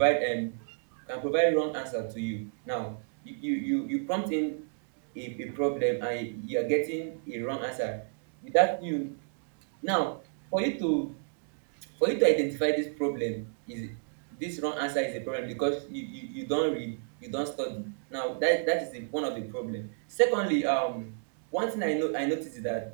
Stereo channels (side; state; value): left; silent; digital silence